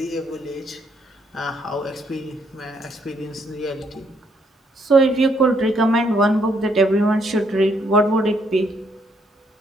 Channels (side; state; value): both; normal; correlation 0.71